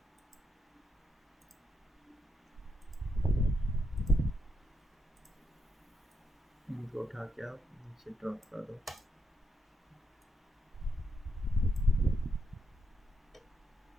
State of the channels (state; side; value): normal; both; correlation 0.81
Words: इनको उठा के आप नीचे ड्रॉप कर दो।